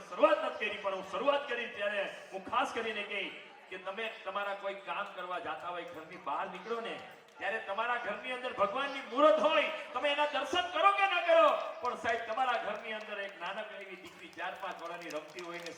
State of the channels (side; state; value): both; identical; correlation 1.00